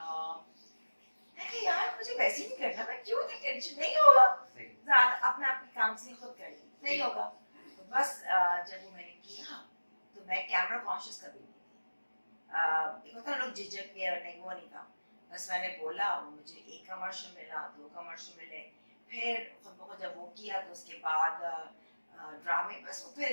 यार मुझे वैसे ही नहीं करना, मैं क्यों नहीं, टेंशन नहीं होगा, ज़्यादा अपना अपनी काउंसलिंग खुद कर ली, नहीं होगा। तो बस जब वो मैंने किया तो मैं कैमरा कॉन्शियस कभी नहीं थी। एक होता है लोग झिझक के, नहीं वो नहीं था। बस मैंने बोला, मुझे एक कमर्शियल मिला, 2 कमर्शियल मिले, फिर खुद ब खुद जब वो किया तो उसके बाद ड्रामे, बस वो फिर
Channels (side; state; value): both; inverted; correlation -1.00